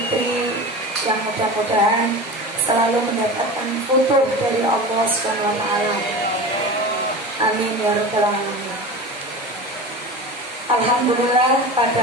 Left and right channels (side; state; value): both; normal; correlation 0.30